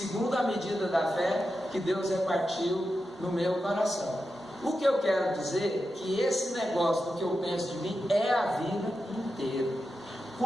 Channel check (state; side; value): normal; both; correlation 0.90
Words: a medida da fé que Deus repartiu no meu coração. O que eu quero dizer é que esse negócio do que eu penso de mim é a vida inteira.